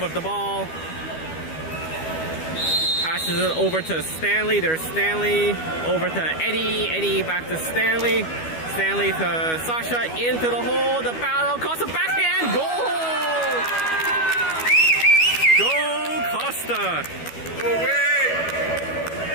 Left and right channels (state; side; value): late; right; 12 ms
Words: the ball. Passes it over to Stanley. There's Stanley. Over to Eddie. Eddie back to Stanley. Stanley to Sasha. Into the hole. The battle. Costa backhand. Goal! Go Costa!